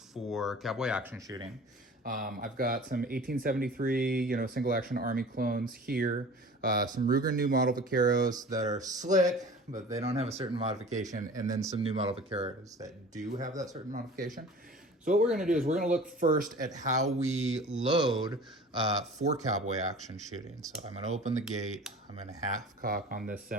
cowboy action shooting. I've got some 1873, single action Army clones here, some Ruger new model Vaqueros that are slick, but they don't have a certain modification, and then some new model Vaqueros that do have that certain modification. So what we're going to do is we're going to look first at how we load for cowboy action shooting. So I'm going to open the gate. I'm going to half cock on this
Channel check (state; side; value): normal; both; correlation 0.42